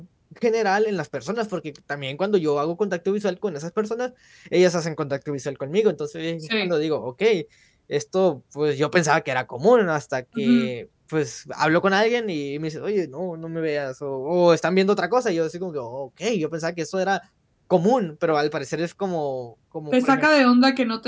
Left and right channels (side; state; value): both; identical; correlation 1.00